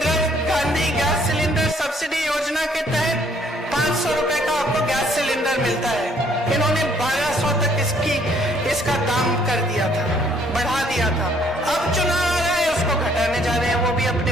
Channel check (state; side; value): normal; both; correlation 0.64